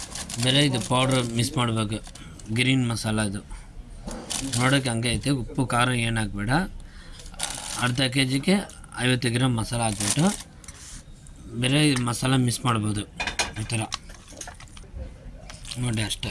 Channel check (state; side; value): identical; both; correlation 1.00